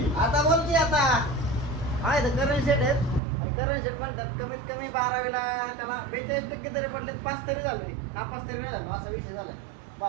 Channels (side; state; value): left; drops out; at 3.2 s